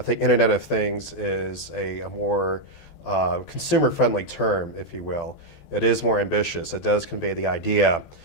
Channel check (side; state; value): right; late; 14 ms